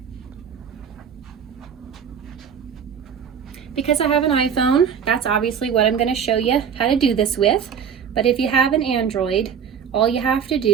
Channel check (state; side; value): quieter; left; 7.4 dB